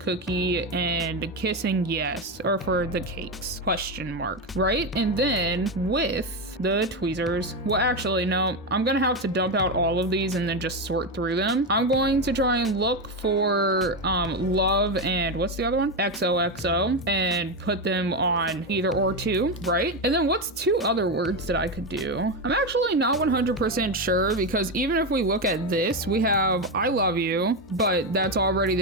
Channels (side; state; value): both; normal; correlation 0.12